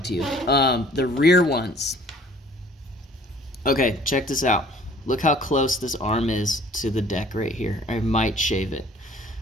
to you. The rear ones. Okay, check this out. Look how close this arm is to the deck right here. I might shave it.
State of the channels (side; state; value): both; normal; correlation 0.54